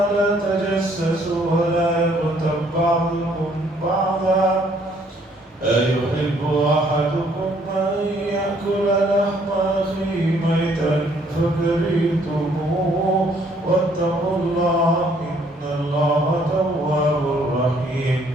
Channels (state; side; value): normal; both; correlation 0.64